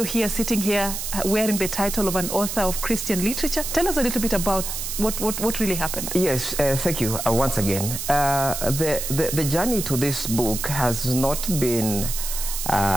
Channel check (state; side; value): noise; right; hiss, 5 dB below the sound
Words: here, sitting here, wearing the title of an author of Christian literature. Tell us a little bit about what really happened. Yes, thank you once again. The journey to this book has not been